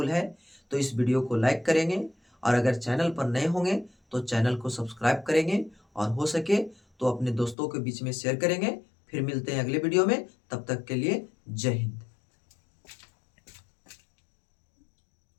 है तो इस वीडियो को लाइक करेंगे, और अगर चैनल पर नए होंगे तो चैनल को सब्सक्राइब करेंगे, और हो सके तो अपने दोस्तों के बीच में शेयर करेंगे। फिर मिलते हैं अगले वीडियो में, तब तक के लिए जय हिंद।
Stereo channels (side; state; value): right; drops out; at 7.6 s